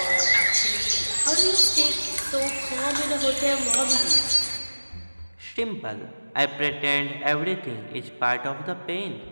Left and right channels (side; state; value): both; inverted; correlation -1.00